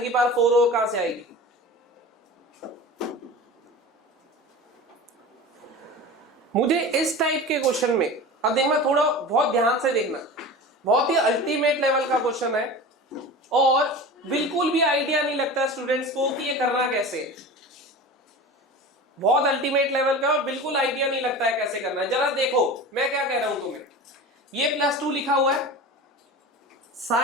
की पावर 4 और कहां से आएगी? मुझे इस टाइप के क्वेश्चन में, अब देखना, थोड़ा बहुत ध्यान से देखना, बहुत ही अल्टीमेट लेवल का क्वेश्चन है और बिल्कुल भी आइडिया नहीं लगता स्टूडेंट्स को कि ये करना कैसे है। बहुत अल्टीमेट लेवल का और बिल्कुल आइडिया नहीं लगता है कैसे करना है। जरा देखो मैं क्या कह रहा हूं तुम्हें, ये +2 लिखा हुआ है,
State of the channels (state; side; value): normal; both; correlation 0.33